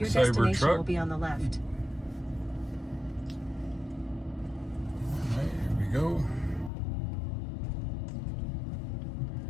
destination Cybertruck. will be on the left. All right, here we go.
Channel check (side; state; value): right; drops out; at 6.7 s